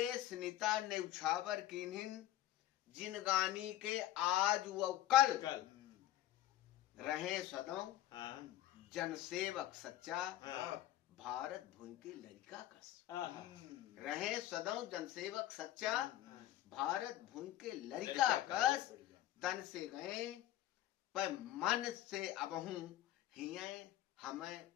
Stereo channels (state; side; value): quieter; right; 13.7 dB